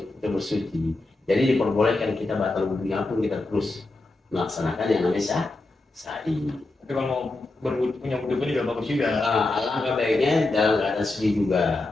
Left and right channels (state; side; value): quieter; right; 3.0 dB